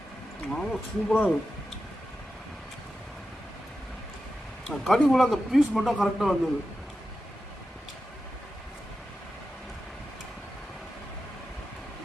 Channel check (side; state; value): both; normal; correlation 0.91